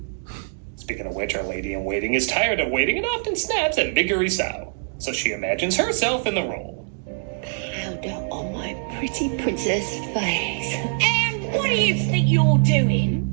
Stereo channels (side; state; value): left; silent; digital silence